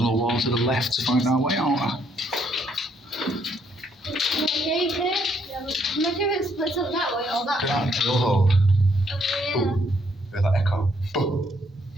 wall to the left to find our way out. Okay, there. Imagine if it splits up that way or that way. Yeah, drill hole. Oh, yeah. Boom. Hear that echo? Boom.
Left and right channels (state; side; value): normal; both; correlation 0.71